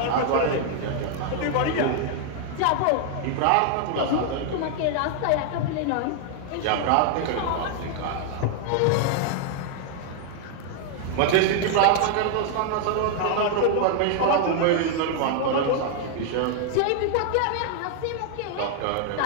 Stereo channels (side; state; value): both; different; correlation 0.00